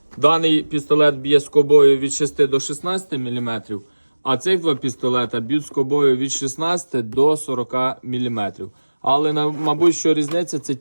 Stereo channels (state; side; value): inverted; both; correlation -1.00